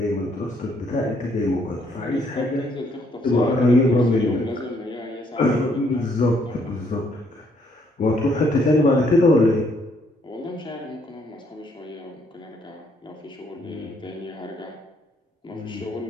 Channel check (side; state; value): both; normal; correlation 0.69